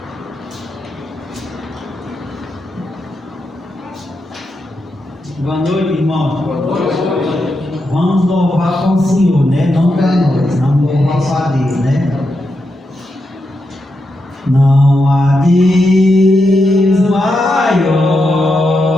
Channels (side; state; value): both; normal; correlation 0.85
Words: Boa noite, irmão. Boa noite. Vamos louvar para o Senhor, né? Não para nós, vamos louvar para Deus, né? Não há Deus maior,